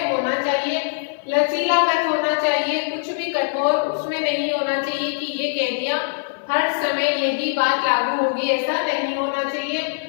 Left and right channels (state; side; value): silent; right; 58 dB below the other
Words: होना चाहिए, लचीलापन होना चाहिए, कुछ भी कठोर उसमें नहीं होना चाहिए कि ये कह दिया हर समय यही बात लागू होगी, ऐसा नहीं होना चाहिए।